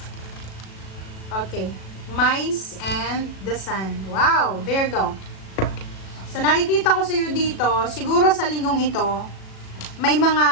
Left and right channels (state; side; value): late; right; 37 ms